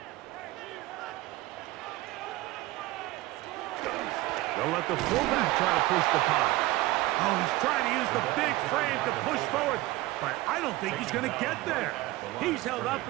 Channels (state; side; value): quieter; left; 18.3 dB